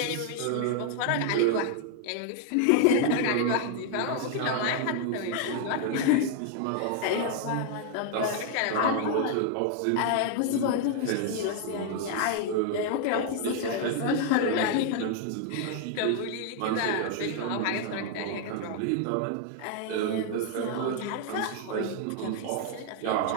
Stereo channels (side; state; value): both; different; correlation 0.00